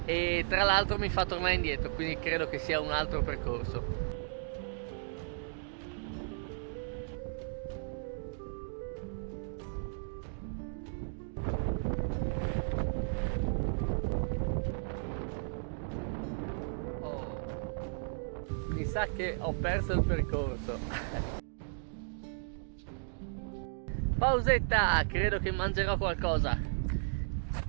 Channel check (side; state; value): left; silent; digital silence